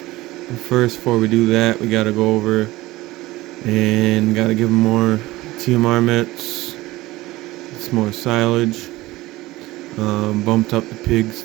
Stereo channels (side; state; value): left; quieter; 18.6 dB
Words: first, before we do that, we gotta go over and gotta give them more TMR mitts, some more silage. Bumped up the pigs